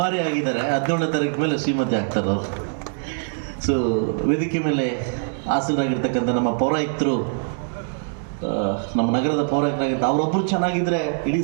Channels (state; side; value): silent; left; digital silence